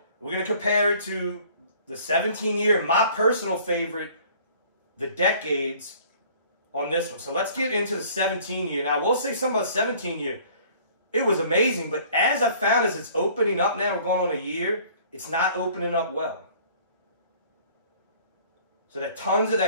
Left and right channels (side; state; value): both; inverted; correlation -0.53